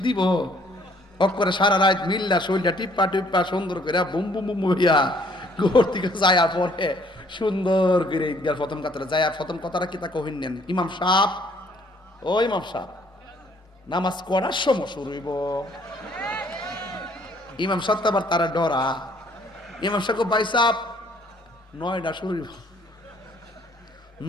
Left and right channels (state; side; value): normal; both; correlation 0.62